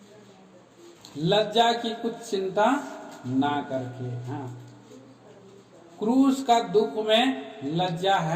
लज्जा की कुछ चिंता ना करके। हाँ, क्रूस का दुख में लज्जा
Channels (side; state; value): both; identical; correlation 1.00